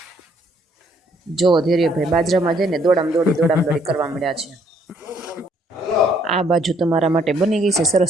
જો ધૈર્યભાઈ બાજરામાં જઈને દોડામ દોડી કરવા મળ્યા છે. આ બાજુ તમારા માટે બની ગઈ છે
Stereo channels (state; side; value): normal; both; correlation 0.67